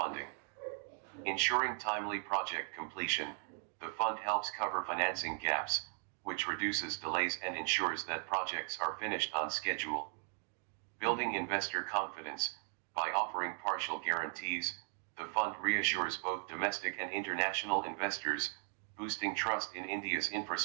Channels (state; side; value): silent; left; 53 dB below the other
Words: Ensuring timely project completion, the fund helps cover financing gaps, which reduces delays and ensures that projects are finished on schedule. Building investor confidence. By offering partial guarantees, the fund reassures both domestic and international investors, boosting trust in India's